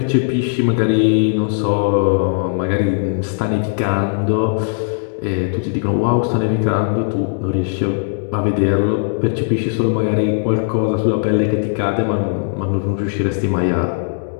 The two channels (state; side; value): silent; right; digital silence